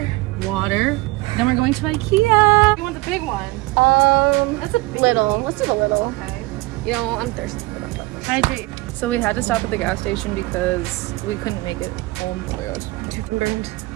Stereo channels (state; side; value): quieter; left; 21.7 dB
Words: water. Then we're going to IKEA. You want the big one? It's a little. Let's do the little. Okay. You know, I'm thirsty for that. Hydrate. So we had to stop at the gas station because we couldn't make it home. Oh my god,